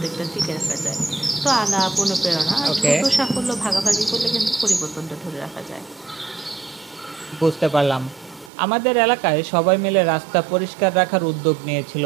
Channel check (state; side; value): drops out; left; at 8.5 s